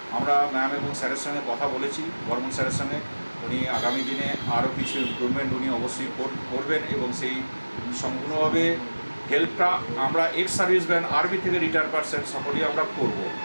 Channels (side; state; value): both; inverted; correlation -1.00